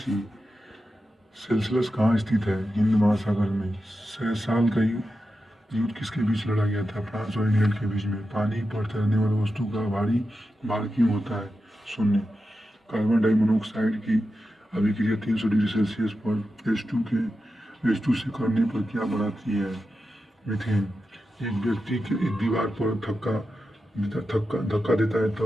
सेल्सियस कहाँ स्थित है? हिंद महासागर में। 100 साल का युद्ध किसके बीच लड़ा गया था? फ्रांस और इंग्लैंड के बीच में। पानी पर तैरने वाली वस्तु का भारी भार क्यों होता है? शून्य। कार्बन डाइमोनोक्साइड की अभिक्रिया 300 डिग्री सेल्सियस पर H2 से करने पर क्या बनाती है? मीथेन। एक व्यक्ति एक दीवार पर धक्का देता है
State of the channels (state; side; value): normal; both; correlation 0.90